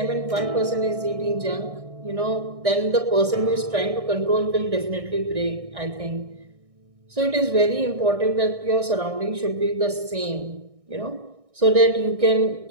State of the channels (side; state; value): left; late; 1.6 ms